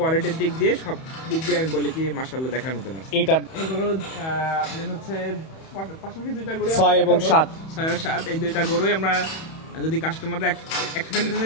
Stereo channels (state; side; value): late; right; 31 ms